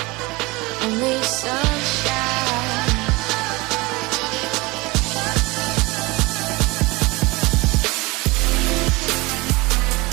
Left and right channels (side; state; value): left; quieter; 23.5 dB